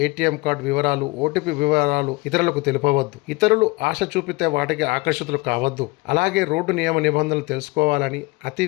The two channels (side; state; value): right; quieter; 24.4 dB